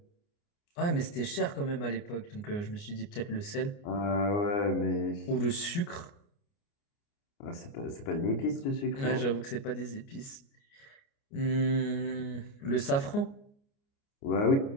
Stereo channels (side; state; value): right; late; 29 ms